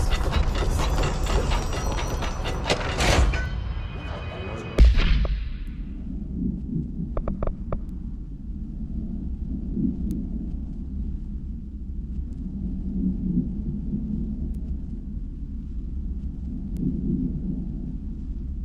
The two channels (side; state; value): both; identical; correlation 1.00